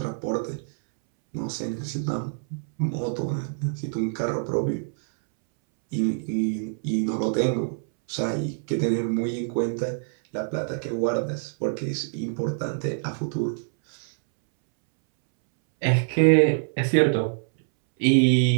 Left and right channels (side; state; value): left; silent; 61 dB below the other